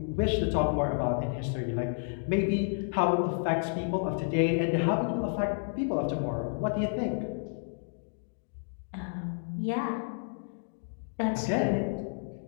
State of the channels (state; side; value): silent; right; digital silence